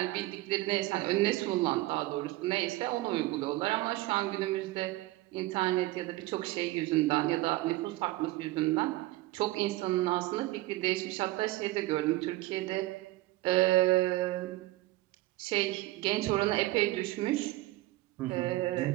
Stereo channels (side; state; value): left; quieter; 18.4 dB